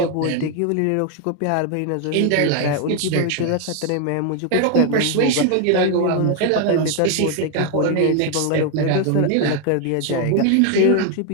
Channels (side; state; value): both; different; correlation 0.01